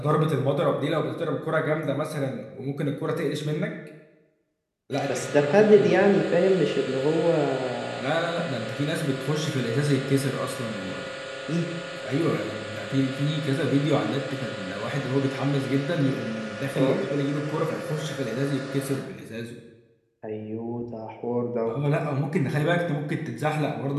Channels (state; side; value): identical; both; correlation 1.00